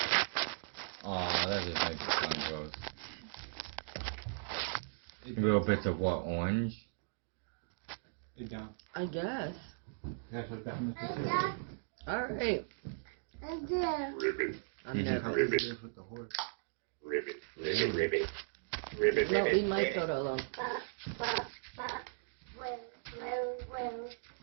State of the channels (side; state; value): left; silent; digital silence